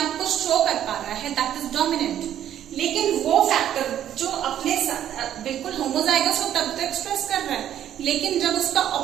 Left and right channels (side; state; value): left; quieter; 10.9 dB